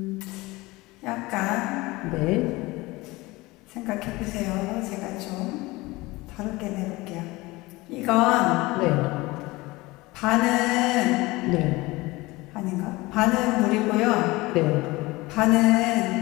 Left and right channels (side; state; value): right; quieter; 21.3 dB